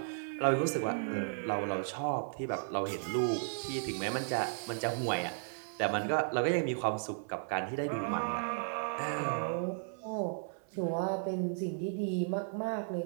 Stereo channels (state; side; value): silent; left; 55 dB below the other